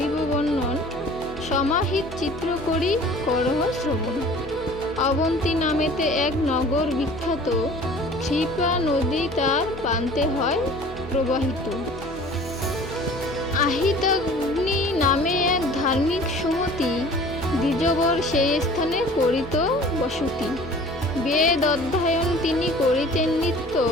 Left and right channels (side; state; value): both; normal; correlation 0.47